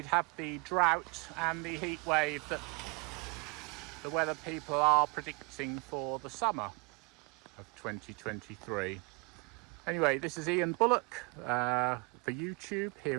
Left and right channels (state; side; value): quieter; left; 31.1 dB